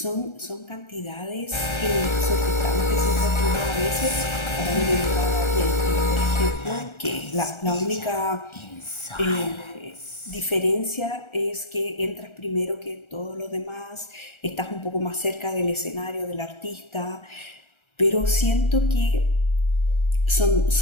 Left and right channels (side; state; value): right; late; 1.3 ms